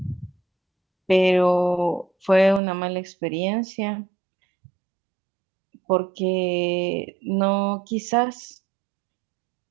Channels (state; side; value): drops out; left; at 2.6 s